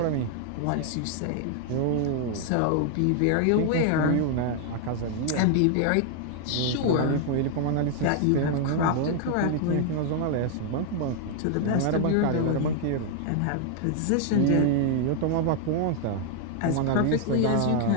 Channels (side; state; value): both; different; correlation 0.00